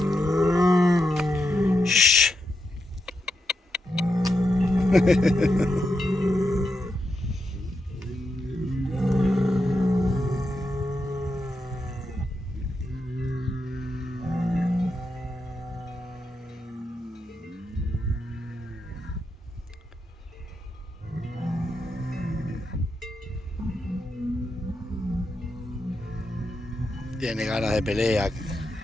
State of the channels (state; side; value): normal; both; correlation 0.85